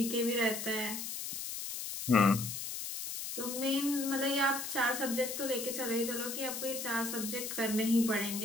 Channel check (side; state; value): left; noise; hiss, 5 dB below the sound